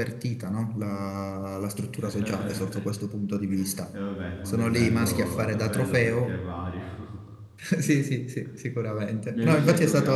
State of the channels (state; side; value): identical; both; correlation 1.00